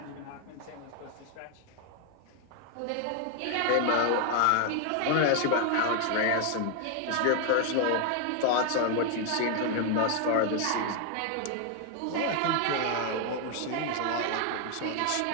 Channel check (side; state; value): both; different; correlation 0.00